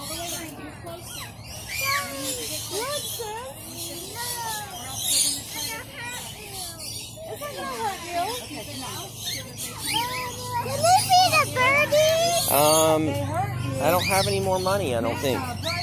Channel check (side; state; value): both; identical; correlation 1.00